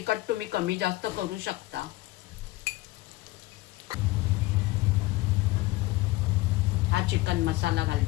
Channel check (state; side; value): quieter; right; 19.3 dB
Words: तुम्ही कमी जास्त करू शकता. हा चिकन मसाला